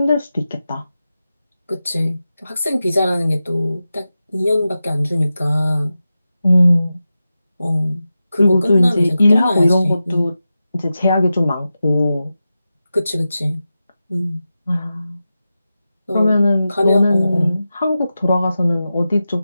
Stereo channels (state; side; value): inverted; both; correlation -0.92